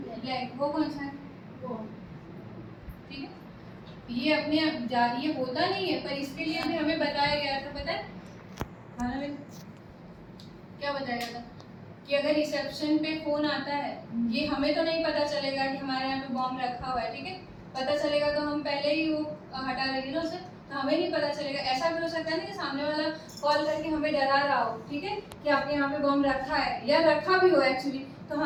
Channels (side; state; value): both; identical; correlation 1.00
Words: वो कौन सा है, ठीक है। ये अपने ये होता नहीं है, पर इसके लिए भी हमें बताया गया था, पता है खाना में क्या बताया गया था कि अगर रिसेप्शन पे फोन आता है, ये हमें तो नहीं पता चलेगा कि हमारे यहाँ पे बॉम्ब रखा हुआ है, ठीक है। पता चलेगा तो हम पहले ही वो हटा देंगे ना उसे, तो हमें नहीं पता चलेगा। ऐसा भी हो सकता है ना कि सामने वाला कॉल करके हमें डरा रहा हो, ठीक है, कि आपके यहाँ पे बॉम्ब रखा है, या रखा भी हो एक्चुअली, तो